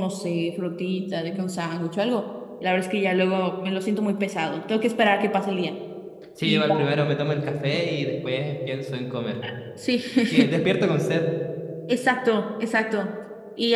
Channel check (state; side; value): identical; both; correlation 1.00